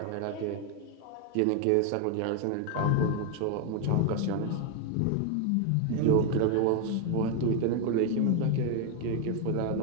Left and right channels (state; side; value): different; both; correlation 0.01